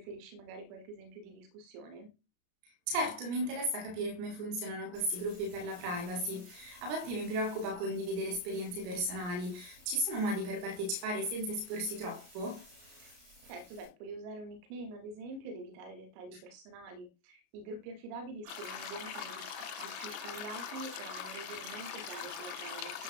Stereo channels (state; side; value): late; left; 33 ms